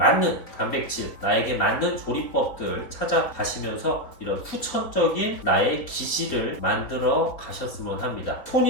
단백질, 나에게 맞는 조리법들 찾아가시면서 이런 후천적인 나의 기질을 만들어 가셨으면 합니다.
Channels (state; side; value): late; right; 4.2 ms